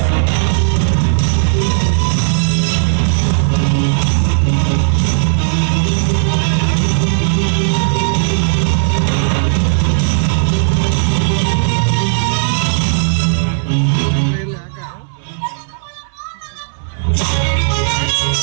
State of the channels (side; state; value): left; silent; digital silence